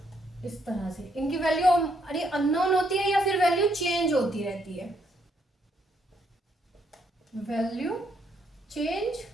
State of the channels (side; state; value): both; normal; correlation 0.73